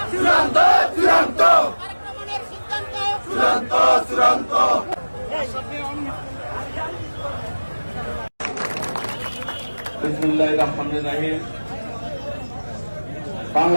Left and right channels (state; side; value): inverted; both; correlation -1.00